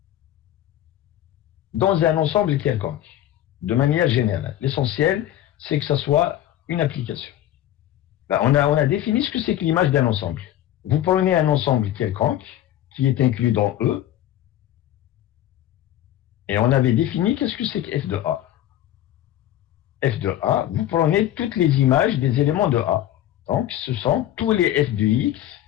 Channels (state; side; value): quieter; right; 12.6 dB